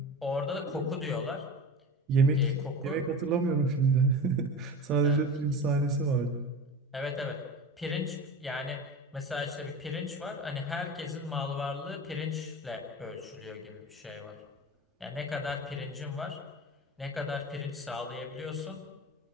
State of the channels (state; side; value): normal; both; correlation 0.31